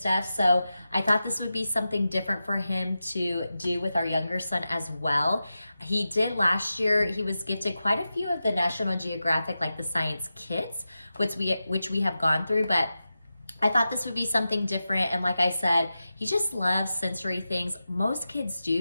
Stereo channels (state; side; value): inverted; both; correlation -0.92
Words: So I thought this would be something different for him to do with our younger son as well. He did last year, he was gifted quite a few of the National Geographic, like the science kits, which we have gone through, but I thought this would be something different. And like I said, he just loves sensory things. Most kids